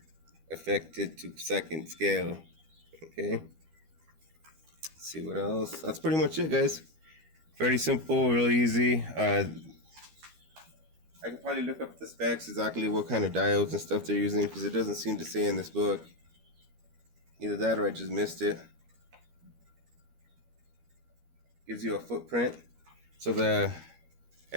affected to second scale. Okay. Let's see what else. That's pretty much it, guys. Very simple, really easy. I could probably look up the specs, exactly what kind of diodes and stuff they're using, because it doesn't seem to say in this book. Either that or I just missed it. Gives you a footprint. So the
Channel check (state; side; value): late; left; 13 ms